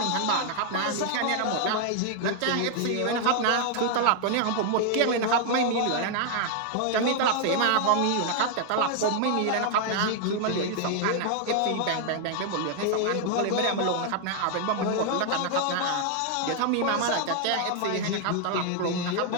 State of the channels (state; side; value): different; both; correlation 0.00